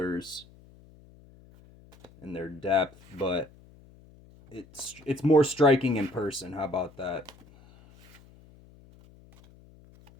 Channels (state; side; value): noise; left; hum, 25 dB below the sound